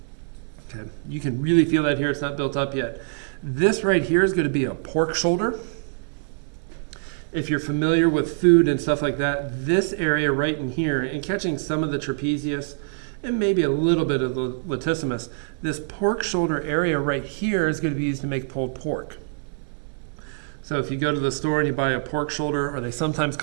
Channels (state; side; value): silent; left; 62 dB below the other